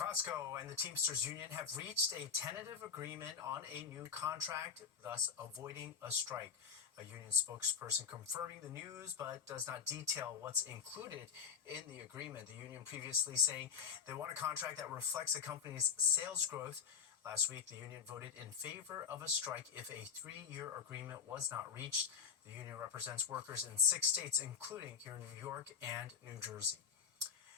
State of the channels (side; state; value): right; quieter; 6.9 dB